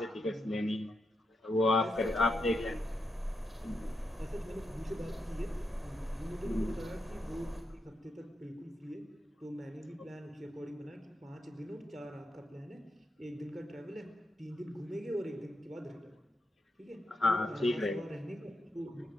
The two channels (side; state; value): both; normal; correlation 0.84